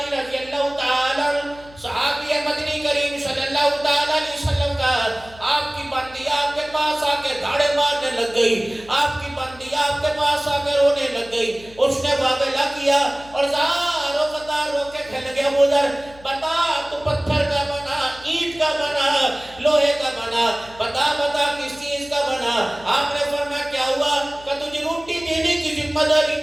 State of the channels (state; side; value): noise; left; hum, 22 dB below the sound